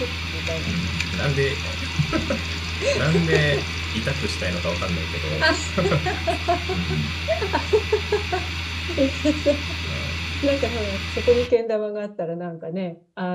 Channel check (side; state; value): both; identical; correlation 1.00